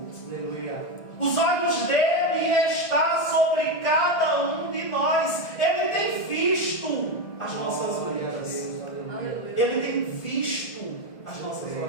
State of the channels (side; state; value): right; late; 1.6 ms